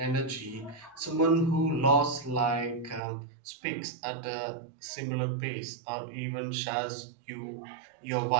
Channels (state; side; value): drops out; left; at 3.0 s